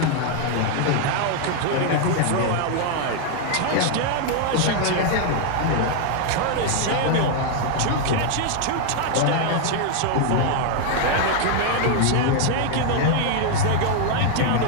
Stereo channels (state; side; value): different; both; correlation 0.00